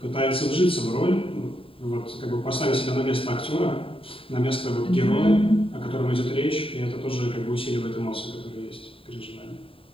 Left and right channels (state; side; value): late; right; 0.27 ms